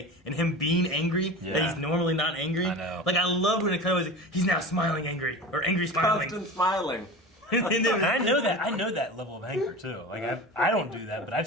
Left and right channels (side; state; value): both; normal; correlation 0.31